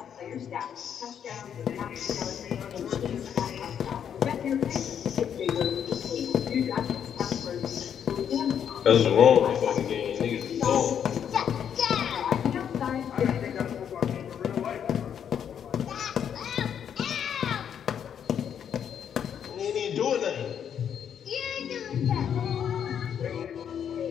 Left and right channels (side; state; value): right; quieter; 8.5 dB